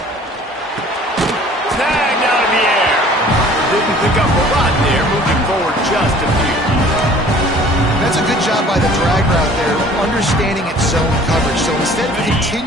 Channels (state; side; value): normal; both; correlation 0.51